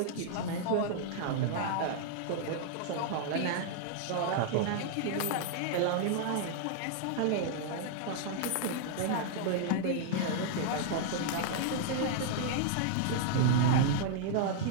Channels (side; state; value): both; different; correlation -0.01